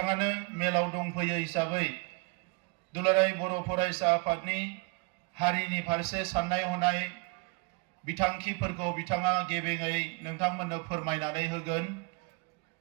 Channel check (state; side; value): quieter; left; 30.0 dB